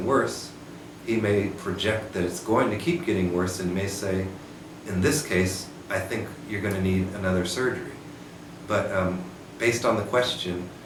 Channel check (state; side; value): identical; both; correlation 1.00